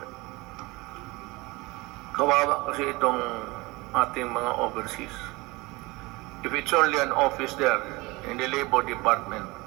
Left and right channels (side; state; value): left; quieter; 23.4 dB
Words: Kawawa kasi itong ating mga overseas. If it's only an office there in the Labor Department,